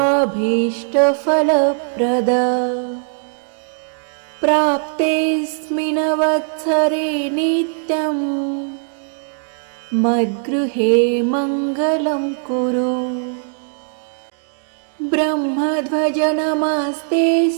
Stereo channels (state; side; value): silent; left; 66 dB below the other